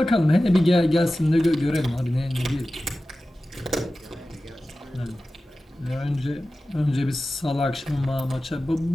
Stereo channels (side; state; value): both; normal; correlation 0.95